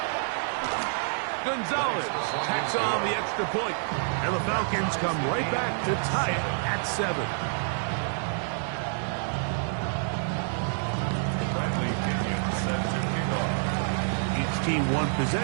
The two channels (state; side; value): silent; left; 59 dB below the other